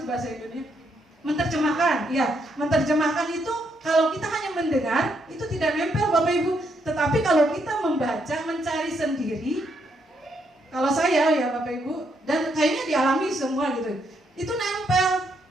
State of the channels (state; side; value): normal; both; correlation 0.76